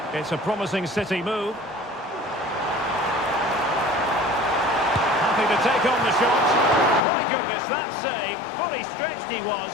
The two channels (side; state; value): right; drops out; at 7.1 s